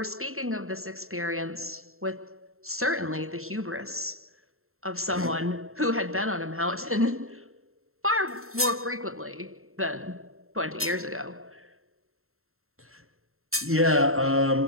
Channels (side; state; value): left; late; 0.62 ms